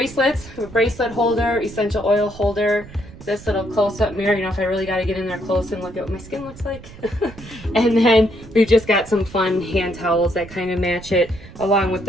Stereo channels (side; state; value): right; noise; rumble, 18 dB below the sound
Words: I have a bracelet holder, essential oil holder, this little close-up mirror, you know, if I really got to get in there close and look at what my skin looks like. And then we've just got some fun hand towels that kind of match it along with